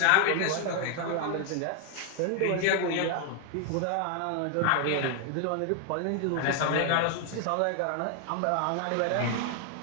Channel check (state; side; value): different; both; correlation 0.00